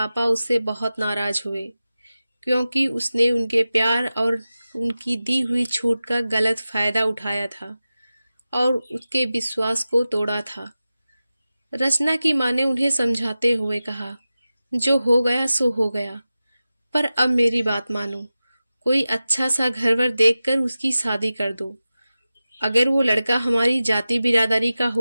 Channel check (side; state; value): both; inverted; correlation -0.95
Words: उससे बहुत नाराज हुए, क्योंकि उसने उनके प्यार और उनकी दी हुई छूट का गलत फायदा उठाया था और उसके विश्वास को तोड़ा था। रचना की माँ ने उन्हें समझाते हुए कहा, जो हो गया सो हो गया, पर अब मेरी बात मानो, कोई अच्छा सा घर वर देखकर उसकी शादी कर दो। अगर वो लड़का हमारी जाति बिरादरी का